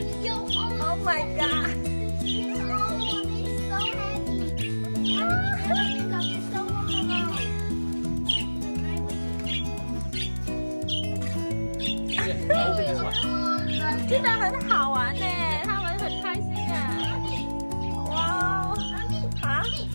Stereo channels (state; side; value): inverted; both; correlation -1.00